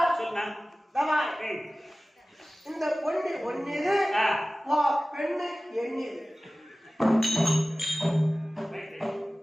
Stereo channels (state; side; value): normal; both; correlation 0.97